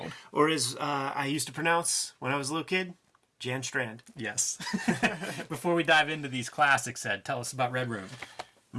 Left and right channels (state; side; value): identical; both; correlation 1.00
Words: Or as I used to pronounce when I was a little kid, Jan Strand. Yes. Before we dive into these classics, Ed, tell us about Red Room.